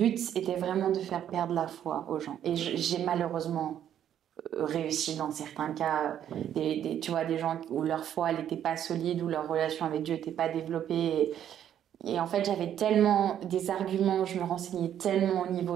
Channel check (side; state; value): left; quieter; 10.2 dB